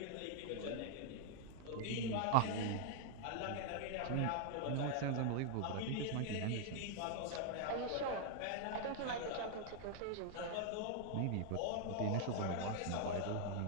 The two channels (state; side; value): different; both; correlation 0.00